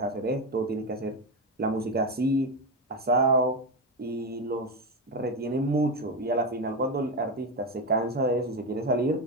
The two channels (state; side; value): normal; both; correlation 0.14